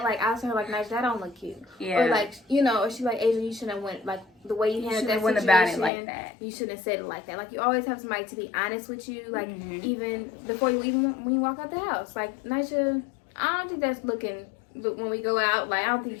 like I'll tell her like, "Nice, that don't look cute," Yeah. or like, you know, or she like, "Adrian, you shouldn't have went like the way you handled that went situation. about it like that. You shouldn't have said it like that." Like you always have somebody to be honest with you, like Mhm. even before you when you walk out the house. Like Naija, I don't think that's looking. But when we go out, like I don't think you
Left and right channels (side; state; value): right; drops out; at 5.9 s